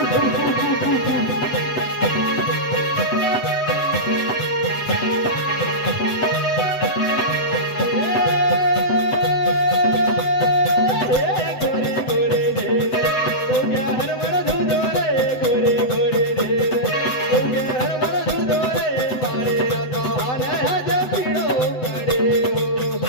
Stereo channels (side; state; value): right; late; 8.1 ms